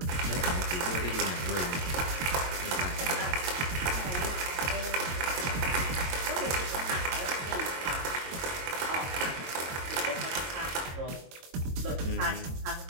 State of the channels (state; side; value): late; left; 22 ms